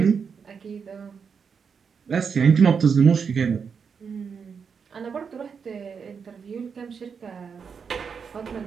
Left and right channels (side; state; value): left; quieter; 6.2 dB